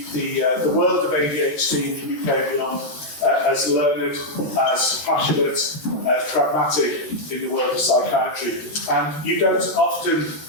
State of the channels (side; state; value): right; late; 13 ms